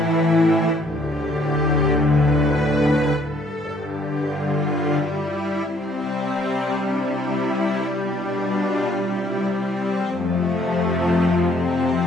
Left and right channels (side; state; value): both; normal; correlation 0.65